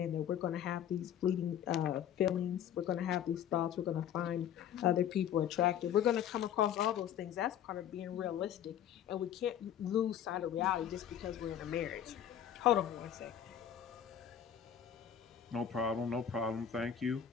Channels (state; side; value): quieter; right; 9.6 dB